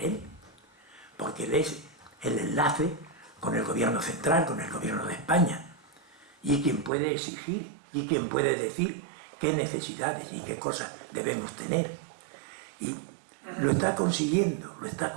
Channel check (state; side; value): drops out; left; at 6.9 s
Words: él, porque él es el enlace con el gobierno central, con el gobierno de España, y quien puede exigir, y quien puede decir qué necesidades y qué cosas debemos tener. Y lo está consiguiendo, lo está